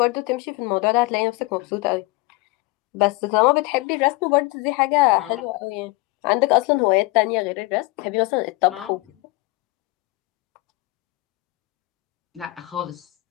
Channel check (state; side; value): quieter; right; 22.0 dB